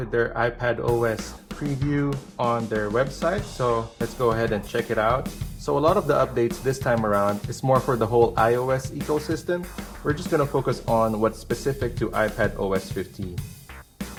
their iPad OS preview on their website, so let's go ahead and check it out. So a lot of the updates this time around is more for the whole iOS ecosystem. We're just going to focus on what's specific to iPad OS 15.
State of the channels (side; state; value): both; identical; correlation 1.00